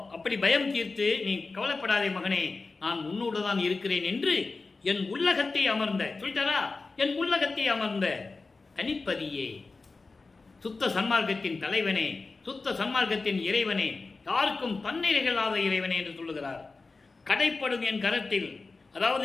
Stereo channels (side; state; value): right; quieter; 3.9 dB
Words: அப்படி பயம் தீர்த்து, நீ கவலைப்படாதே மகனே, நான் உன்னோடு தான் இருக்கிறேன் என்று என் உள்ளகத்தை அமர்ந்த, சொல்லிட்டாரா, என் உள்ளகத்தை அமர்ந்த தனிப்பதியே, சுத்த சன்மார்க்கத்தின் தலைவனே, சுத்த சன்மார்க்கத்தின் இறைவனே, யாருக்கும் தன்னிறைகளாத இறைவனே என்று சொல்லுகிறார். கடைப்படும் என் கரத்தில்,